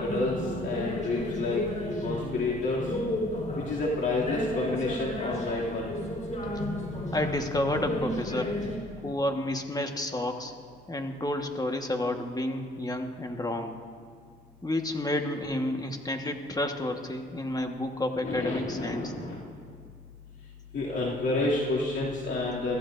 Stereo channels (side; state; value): both; normal; correlation 0.59